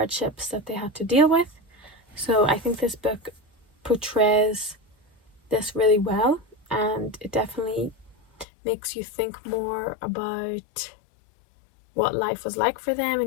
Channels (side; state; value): right; drops out; at 8.5 s